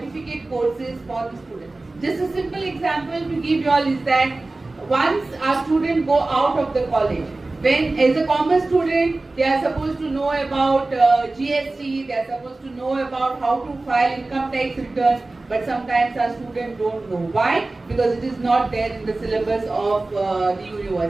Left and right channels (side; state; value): left; quieter; 3.1 dB